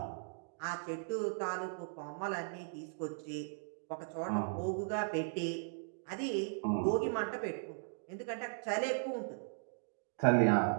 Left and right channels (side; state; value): left; silent; digital silence